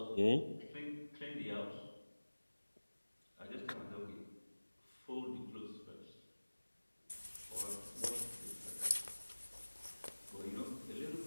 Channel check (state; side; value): inverted; both; correlation -1.00